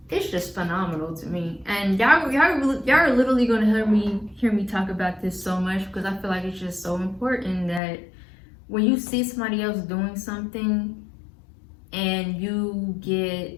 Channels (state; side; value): drops out; right; at 7.8 s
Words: it's just phenomenal to me. And y'all are literally gonna hear me talk about this so much because I feel like it's just so important that when you see somebody else doing something and you